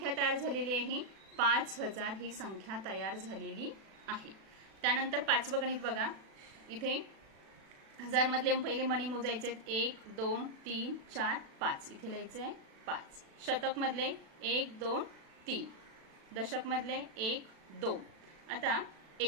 तयार झालेली आहे? 5000 ही संख्या तयार झालेली आहे। त्यानंतर पाचवं गणित बघा, इथे हजार मधले पहिले मणी मोजायचे आहेत। 1 2 3 4 5 इथे लिहायचे आहे 5। शतक मधले 1 2 3, दशक मधले 1 2। आता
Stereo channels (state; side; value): late; left; 36 ms